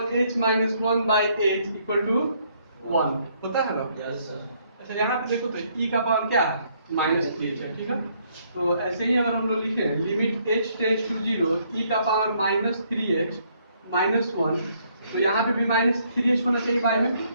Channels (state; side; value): inverted; both; correlation -0.69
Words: h minus 1 by h equal to 1 होता है ना। अच्छा यहाँ पे देखो तो e का पावर क्या है माइनस 3h है, ठीक है। तो ऐसे ही अगर हम लोग लिखे limit h tends to 0 e का पावर माइनस 3h माइनस 1, तो यहाँ पे भी माइनस 3h होना चाहिए बाई में,